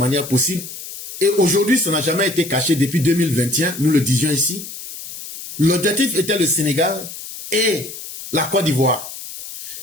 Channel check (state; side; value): noise; left; hiss, 12 dB below the sound